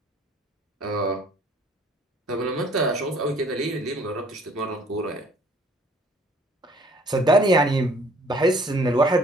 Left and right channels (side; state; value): both; normal; correlation 0.57